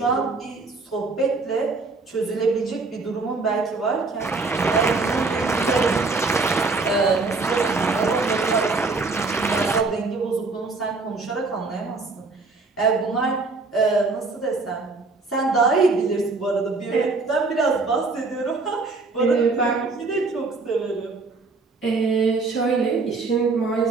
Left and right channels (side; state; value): left; quieter; 3.8 dB